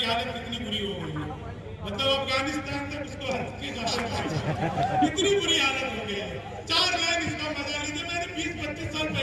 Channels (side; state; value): both; identical; correlation 1.00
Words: हालत कितनी बुरी हो गई है, मतलब अफगानिस्तान तक उसको इतनी बुरी हालत हो गई है। 4 लाइन इसका मजा लीजिए, मैंने 20-25 साल